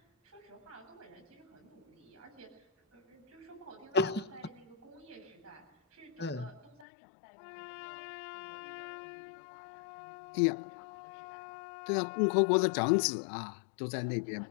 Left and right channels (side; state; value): right; drops out; at 6.9 s